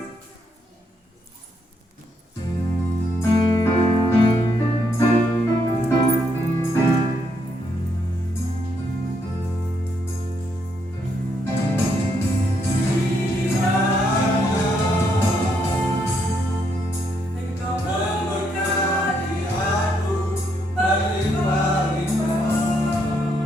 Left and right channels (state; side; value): normal; both; correlation 0.75